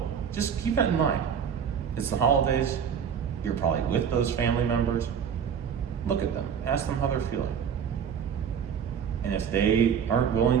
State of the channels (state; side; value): quieter; left; 7.6 dB